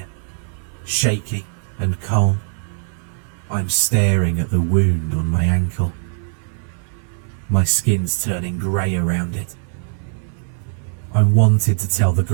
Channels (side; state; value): left; silent; 65 dB below the other